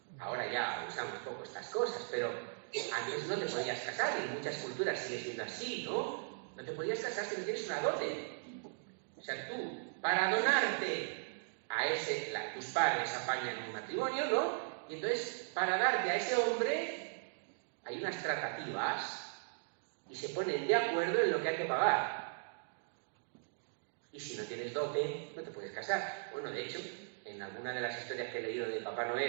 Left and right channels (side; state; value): left; silent; digital silence